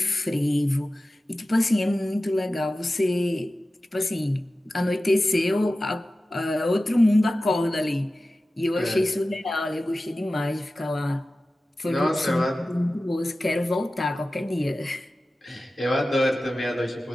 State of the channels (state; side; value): normal; both; correlation 0.95